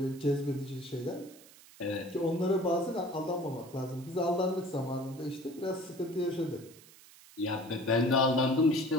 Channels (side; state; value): right; noise; hiss, 22 dB below the sound